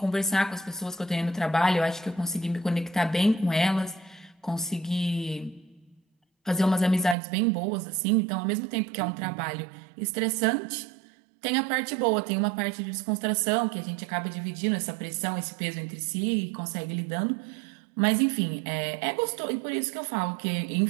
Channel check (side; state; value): left; drops out; at 7.2 s